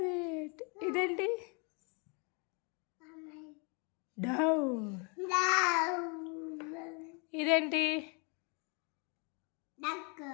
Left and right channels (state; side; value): quieter; right; 34.6 dB